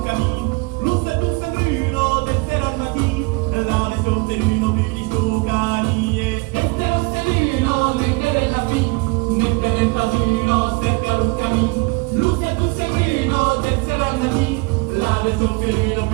cammin, luce tu sembrino, del sera al matin, la veston serino più di sto canie, e te lo serino, ne per la vin, ne per il padrino, cerca un cammin, luce tu sembrino, del sera al matin, la veston serino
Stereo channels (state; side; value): quieter; left; 27.3 dB